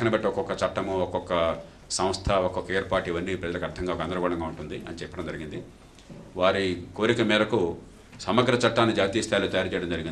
బట్టి ఒక్కొక్క చట్టము, ఒక్కొక్క సంస్థ, ఒక్కొక్క ఏర్పాటు ఇవన్నీ ప్రజలకు అర్థంగా గందరగోళంగా ఉంటుంది అని చెప్పడం జరిగింది. వారి కోరిక మేరకు సమగ్ర చట్టాన్ని జాతీయ స్థాయిలో తయారు చేయడం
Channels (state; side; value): identical; both; correlation 1.00